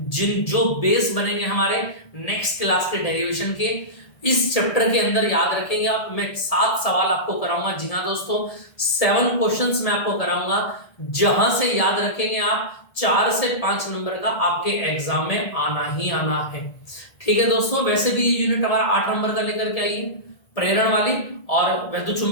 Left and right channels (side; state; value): right; late; 1.8 ms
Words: जिन जो बेस बनेंगे हमारे नेक्स्ट क्लास के डेरिवेशन के। इस चैप्टर के अंदर याद रखेंगे आप, मैं 7 सवाल आपको कराऊंगा। जी हाँ दोस्तों, 7 क्वेश्चंस मैं आपको कराऊंगा, जहां से याद रखेंगे आप 4 से 5 नंबर का आपके एग्जाम में आना ही आना है। ठीक है दोस्तों, वैसे भी यूनिट हमारा 8 नंबर का लेकर के आइए, प्रेरण वाली और वैद्युत